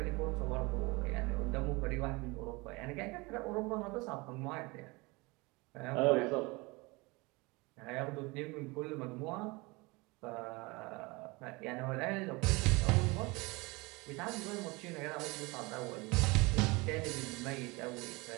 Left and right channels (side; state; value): left; quieter; 25.1 dB